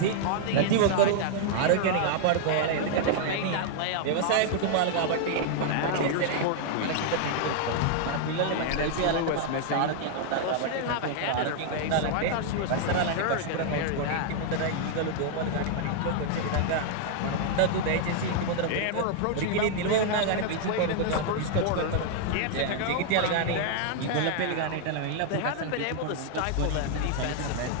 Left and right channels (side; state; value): both; different; correlation -0.01